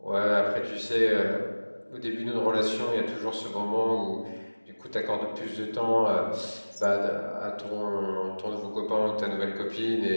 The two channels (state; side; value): inverted; both; correlation -1.00